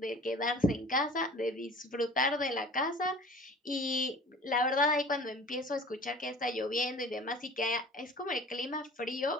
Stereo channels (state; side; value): normal; both; correlation 0.45